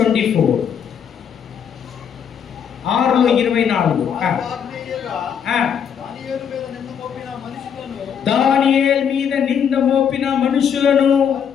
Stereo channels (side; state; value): right; quieter; 7.8 dB